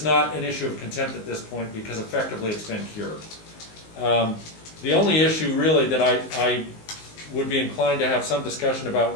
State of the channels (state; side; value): late; right; 19 ms